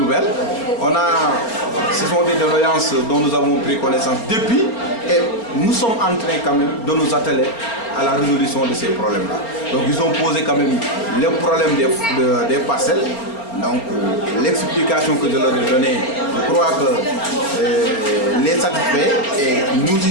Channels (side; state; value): right; late; 4.3 ms